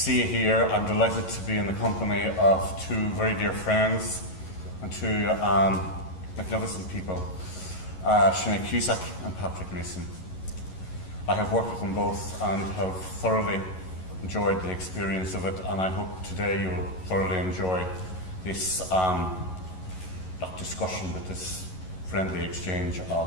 you here. I'm delighted to be in the company of two very dear friends and two magnificent people, Sinead Cusack and Patrick Mason. I have worked with them both and have thoroughly enjoyed the experience of it, and I hope today you will thoroughly enjoy this not discussion, but this friendly exchange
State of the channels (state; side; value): late; right; 11 ms